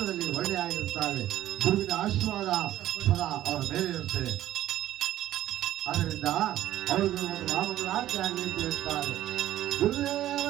ಒಳ್ಳೆ ಆಗಿರ್ತಾರೆ. ಗುರುವಿನ ಆಶೀರ್ವಾದ ಸದಾ ಅವರ ಮೇಲೆ ಇರುತ್ತದೆ. ಆದ್ದರಿಂದ ಅವರಿಗೆ ಒಂದು ನಾಮಗಳಾಗಿ ಆಗಲಿ ಅಂತ ಹೇಳ್ತಾರೆ.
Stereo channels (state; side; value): quieter; left; 13.4 dB